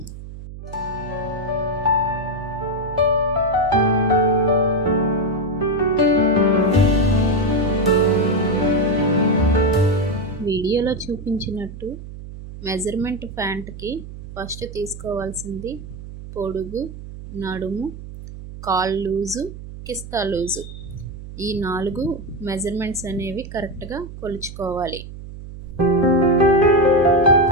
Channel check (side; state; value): right; noise; hum, 13 dB below the sound